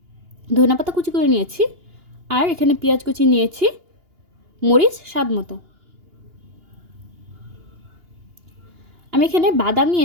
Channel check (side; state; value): left; late; 2.8 ms